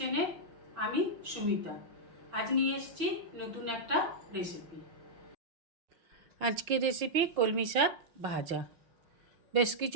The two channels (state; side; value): late; left; 6.3 ms